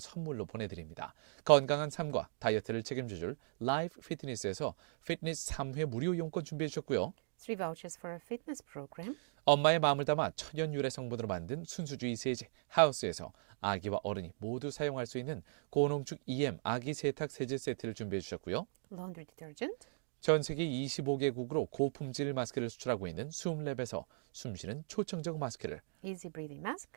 선물로 보내드립니다. 건강한 삶과 다이어트를 책임져줄 라이프 피트니스에서 피트니스 3회 무료 이용권 준비해 주셨고요. 3 vouchers for a fitness program. 엄마의 마음을 담아 천연 유래 성분으로 만든 순수주의 세제 하우스에서 아기와 어른이 모두 사용할 수 있는 고농축 EM 아기 세탁 세제 세트를 준비해 주셨고요. Laundry detergent. 전 세계 25개국으로 고품질 마스크를 수출하고 있는 숨랩에서 숨쉬는 초청적 마스크를, Easy breathing mask.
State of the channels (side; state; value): left; silent; digital silence